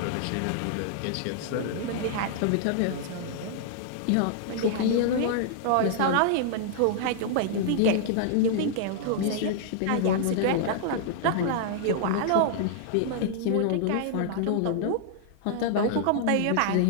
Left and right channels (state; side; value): different; both; correlation -0.01